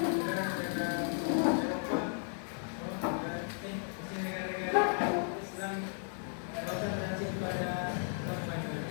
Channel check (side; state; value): right; silent; 54 dB below the other